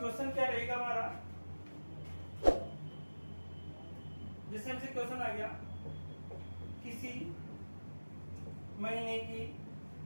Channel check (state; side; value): inverted; both; correlation -1.00